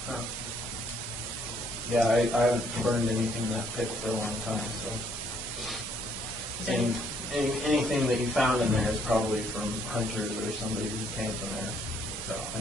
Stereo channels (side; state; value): both; normal; correlation 0.67